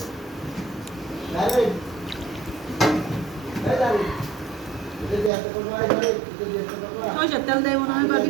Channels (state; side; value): drops out; left; at 5.3 s